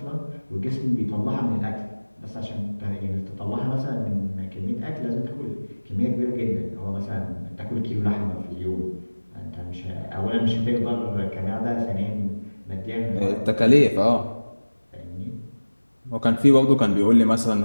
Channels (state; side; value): inverted; both; correlation -1.00